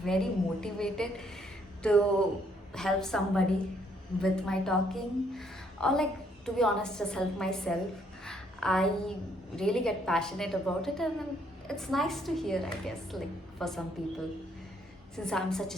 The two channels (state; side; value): normal; both; correlation 0.69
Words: motivated to help somebody with my talking, or to be honest, just help myself, I really get passionate about it, and then it's nice to hear, I guess, for some people, since I'm such